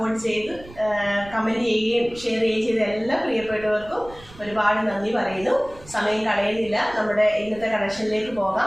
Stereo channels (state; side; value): noise; right; rumble, 20 dB below the sound